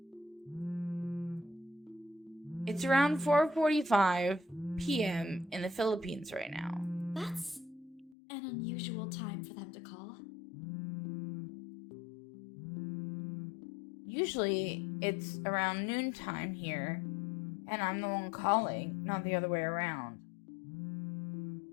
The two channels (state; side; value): drops out; right; at 8.2 s